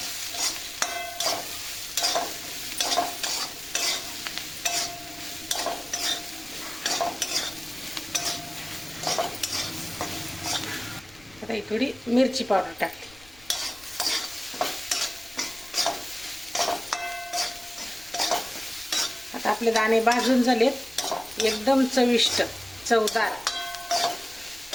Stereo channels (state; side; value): noise; left; rumble, 24 dB below the sound